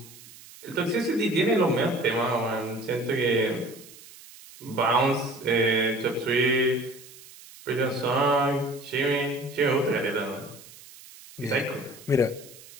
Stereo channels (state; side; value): noise; right; hiss, 20 dB below the sound